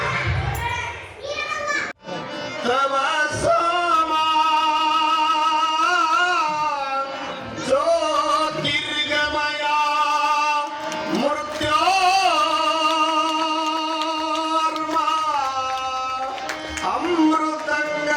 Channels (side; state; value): both; identical; correlation 1.00